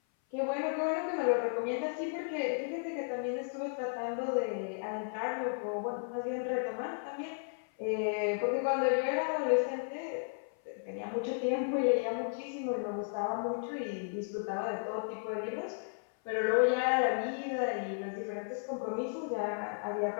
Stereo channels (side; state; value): right; silent; 55 dB below the other